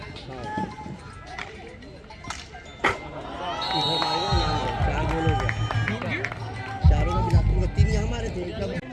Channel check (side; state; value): both; identical; correlation 1.00